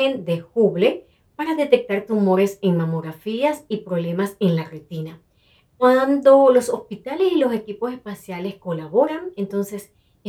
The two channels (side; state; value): both; identical; correlation 1.00